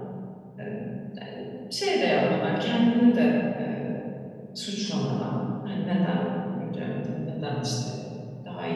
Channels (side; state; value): both; identical; correlation 1.00